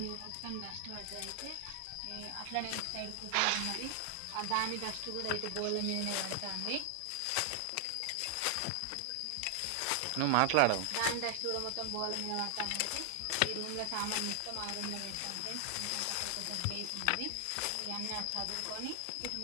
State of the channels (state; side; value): different; both; correlation 0.00